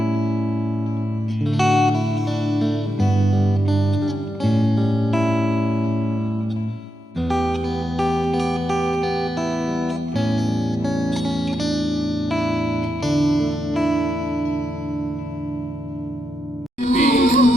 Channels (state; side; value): normal; both; correlation 0.85